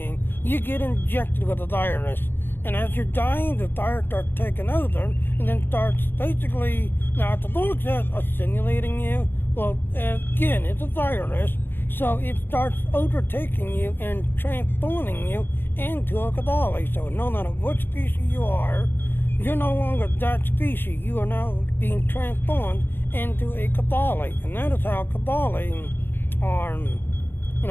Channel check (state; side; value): late; right; 0.098 ms